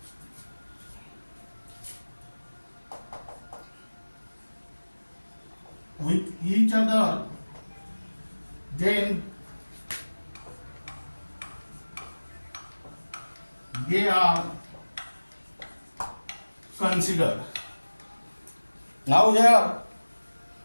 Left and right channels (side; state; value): both; inverted; correlation -1.00